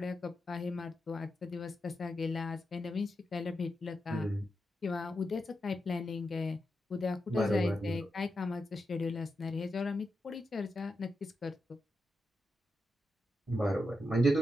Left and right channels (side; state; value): both; normal; correlation 0.87